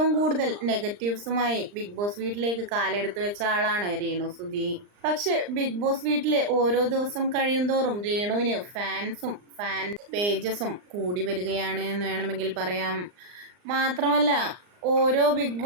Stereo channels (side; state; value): left; late; 39 ms